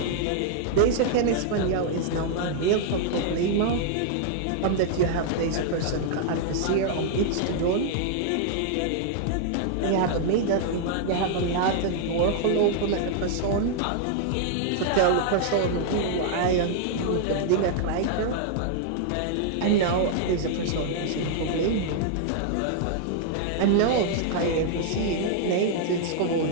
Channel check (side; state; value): both; different; correlation 0.00